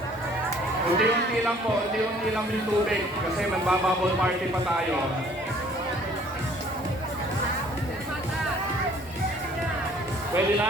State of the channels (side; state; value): both; normal; correlation 0.57